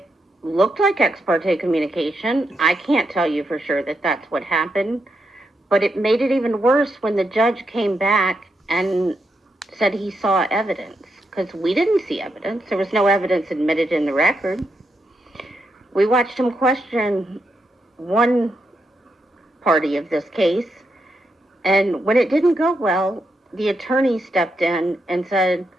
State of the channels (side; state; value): both; normal; correlation 0.82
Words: looked like ex parte communication. I can't tell you for sure that that's what happened, but it made it even worse when the judge came back and said he saw evidence, because we didn't see evidence. There was no evidence admitted in the record. We watched him question one party of this case, and when it didn't go well, the attorney stepped in and said,